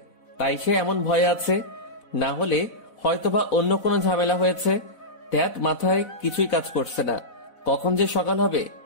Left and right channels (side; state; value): right; late; 4.0 ms